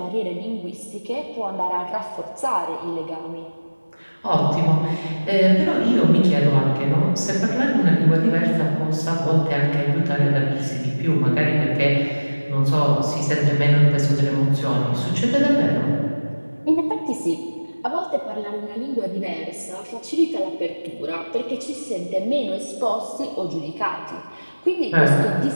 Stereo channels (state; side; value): inverted; both; correlation -1.00